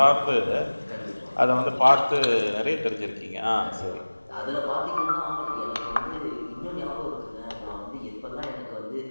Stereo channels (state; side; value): inverted; both; correlation -1.00